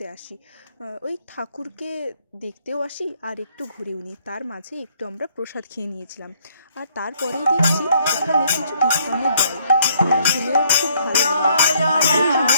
আসি। ওই ঠাকুরকে দেখতেও আসি আর একটু ঘুরেও নিই। তার মাঝে একটু আমরা প্রসাদ খেয়ে নিয়েছিলাম। আর তারপরেই দেখছি এখানে কিছু কীর্তনের দল, শুনেও খুব ভালো লাগলো। আর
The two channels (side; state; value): both; inverted; correlation -0.66